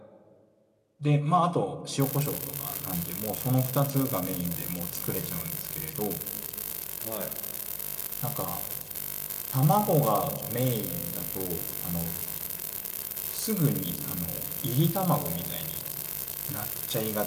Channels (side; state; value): both; identical; correlation 1.00